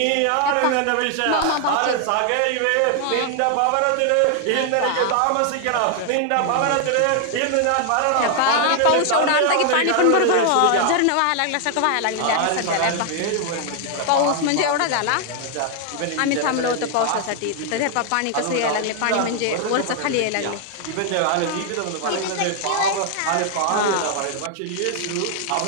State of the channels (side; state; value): both; different; correlation 0.00